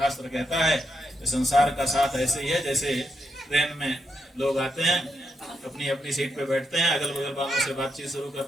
कहता है कि संसार का साथ ऐसे ही है जैसे ट्रेन में लोग आते हैं, अपनी अपनी सीट पे बैठते हैं, अगल बगल वालों से बातचीत शुरू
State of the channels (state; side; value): normal; both; correlation 0.82